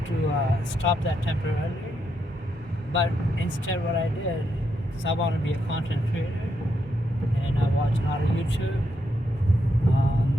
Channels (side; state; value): both; normal; correlation 0.80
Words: to stop that temporarily, but instead what I did is I want to be a content creator, and I watch a lot of YouTube,